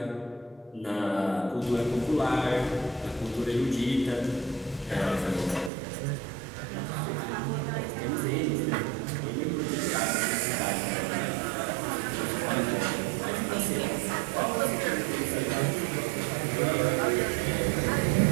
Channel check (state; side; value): drops out; left; at 5.7 s